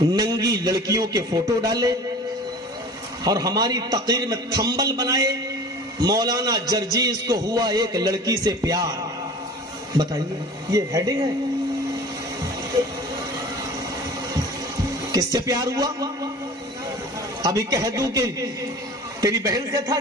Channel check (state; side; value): normal; both; correlation 0.41